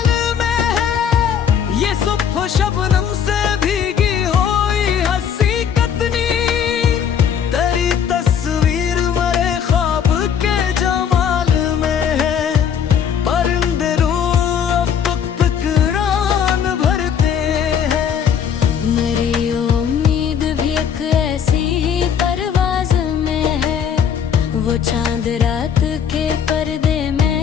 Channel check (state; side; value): quieter; right; 8.0 dB